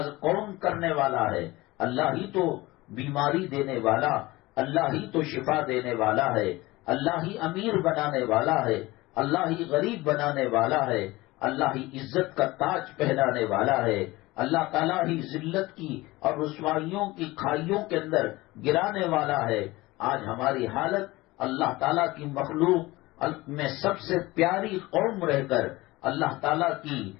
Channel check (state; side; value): quieter; right; 20.1 dB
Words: کون کرنے والا ہے؟ اللہ ہی تو بیماری دینے والا، اللہ ہی تو شفا دینے والا ہے، اللہ ہی امیر بنانے والا ہے، اللہ ہی غریب بنانے والا ہے، اللہ ہی عزت کا تاج پہنانے والا ہے، اللہ تعالیٰ ہی ذلت کی اور رسوائیوں کی کھائیوں کے اندر گرانے والا ہے۔ آج ہماری حالت اللہ تعالیٰ کی مخلوق میں سب سے پیاری قوم رہ کر، اللہ تعالیٰ کی